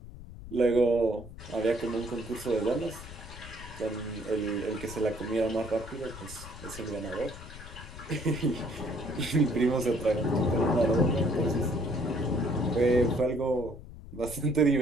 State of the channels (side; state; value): left; noise; rumble, 14 dB below the sound